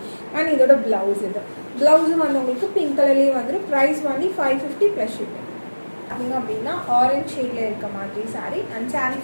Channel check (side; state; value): both; inverted; correlation -1.00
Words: அண்ட் இதோட பிளவுஸ் இது பிளவுஸும் வந்து உங்களுக்கு பிங்க் கலர்லேயே வந்துடும். Price only 550 plus shipping. பார்த்தீங்க அப்படின்னா ஆரஞ்ச் ஷேடில் இருக்க மாதிரி சாரீ அண்ட் சாரீ